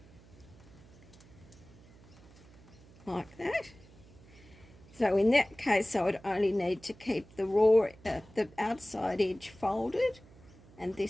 like that. So in that case, I would only need to keep the raw, the outside edge folded, and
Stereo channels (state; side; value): noise; right; hum, 23 dB below the sound